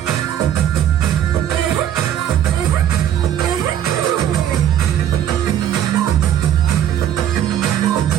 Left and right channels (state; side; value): quieter; left; 10.4 dB